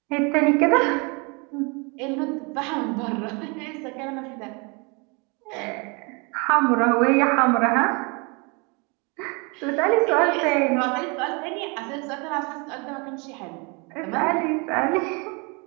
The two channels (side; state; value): left; quieter; 30.9 dB